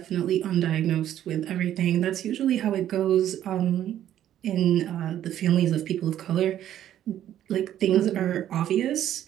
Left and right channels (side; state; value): left; quieter; 11.5 dB